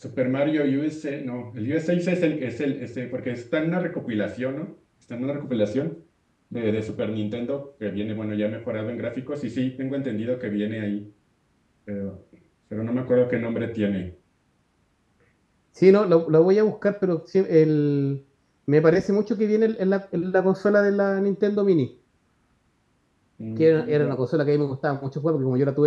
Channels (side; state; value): both; identical; correlation 1.00